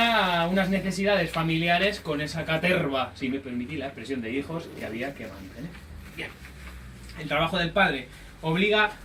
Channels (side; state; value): both; identical; correlation 1.00